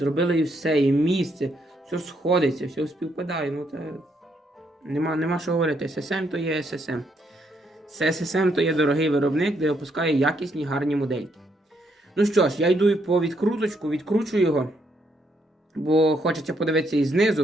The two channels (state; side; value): normal; both; correlation 0.74